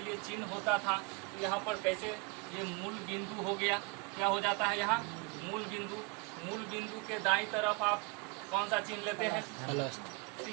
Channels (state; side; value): quieter; left; 28.1 dB